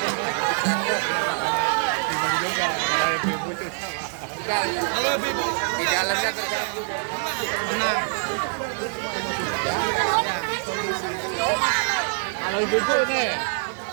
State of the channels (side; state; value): left; silent; digital silence